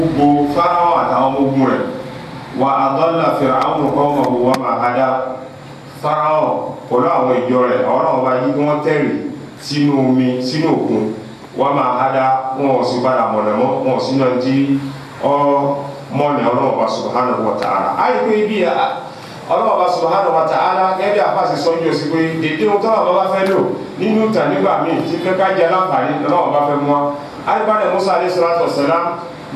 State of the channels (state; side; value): identical; both; correlation 1.00